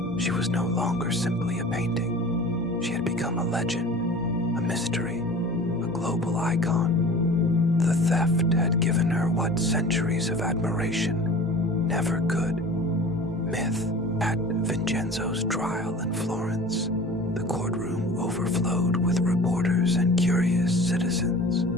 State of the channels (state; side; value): normal; both; correlation 0.41